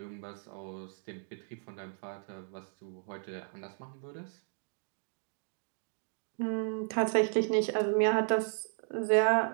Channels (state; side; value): silent; left; 55 dB below the other